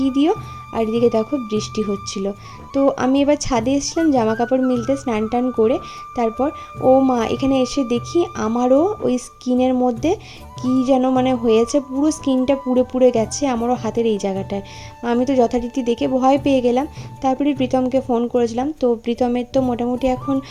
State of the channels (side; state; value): both; identical; correlation 1.00